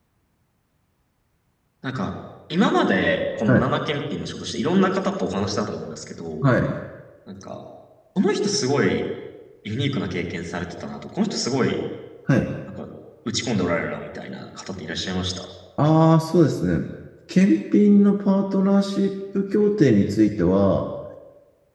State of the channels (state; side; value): identical; both; correlation 1.00